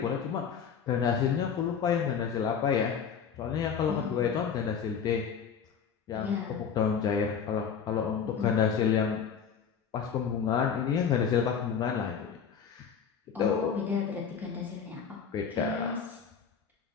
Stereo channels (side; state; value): right; quieter; 7.0 dB